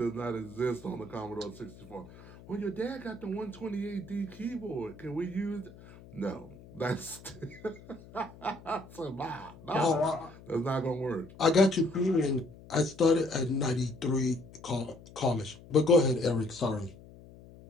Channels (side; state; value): left; noise; hum, 19 dB below the sound